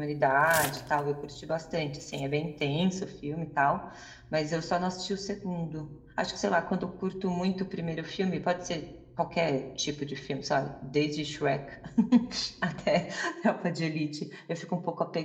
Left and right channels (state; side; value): identical; both; correlation 1.00